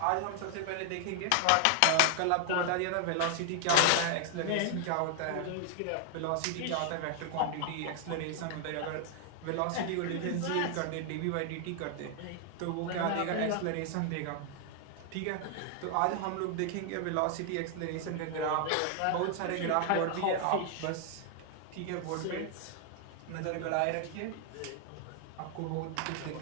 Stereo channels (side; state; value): both; different; correlation 0.00